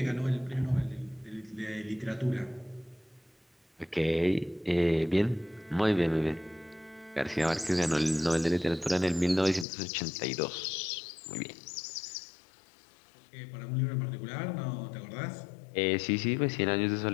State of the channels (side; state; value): right; drops out; at 9.7 s